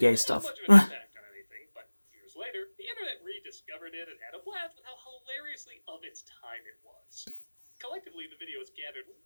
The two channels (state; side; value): inverted; both; correlation -1.00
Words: gay didn't have stuff. much of an impact on anything. But years later, the internet rediscovered it and had a blast with how hilariously of its time it was. Collectively, the video has gathered